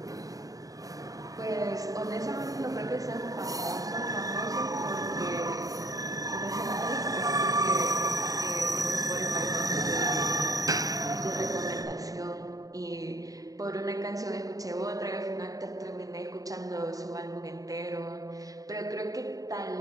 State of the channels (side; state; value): left; late; 0.17 ms